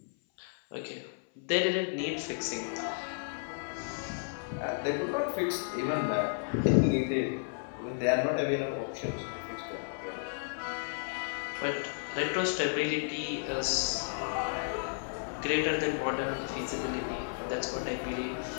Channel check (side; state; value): right; silent; 56 dB below the other